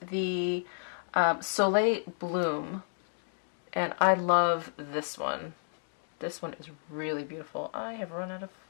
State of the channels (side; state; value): right; silent; digital silence